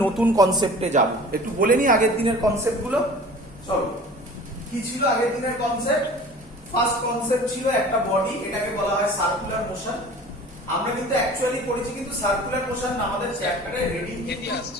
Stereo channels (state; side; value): normal; both; correlation 0.43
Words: নতুন কনসেপ্টে যাব। একটু বলে নিই আগের দিনের কনসেপ্টগুলো। চলো, কি ছিল আগের দিনের কনসেপ্ট? ফার্স্ট কনসেপ্ট ছিল একটা বডি, এটাকে বলা হয় সার্কুলার মোশন। আমরা কিন্তু অ্যাকচুয়ালি পড়েছি কিন্তু সার্কুলার মোশন আমাদের চ্যাপ্টারে হেডিং কি